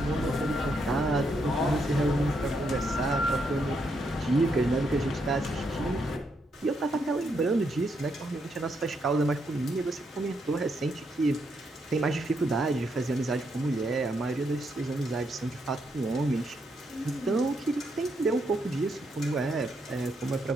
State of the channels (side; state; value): both; normal; correlation 0.78